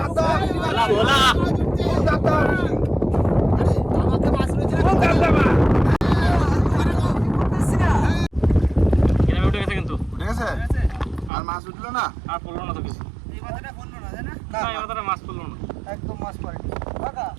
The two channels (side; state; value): left; drops out; at 11.3 s